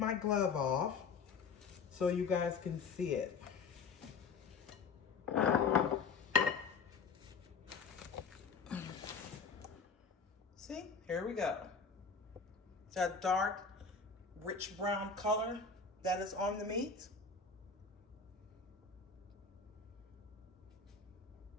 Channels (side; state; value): right; quieter; 5.2 dB